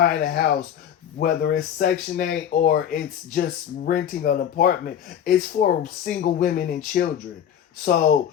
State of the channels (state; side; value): quieter; right; 9.4 dB